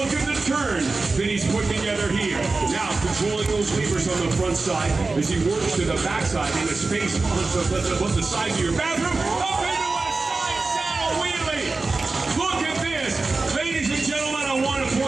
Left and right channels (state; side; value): quieter; left; 3.7 dB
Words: at the turn that he's put together here. Now controlling those levers on the front side as he works to the backside in a space on the side of your bathroom. Up into a side saddle wheelie. Look at this. Ladies and gentlemen, I want to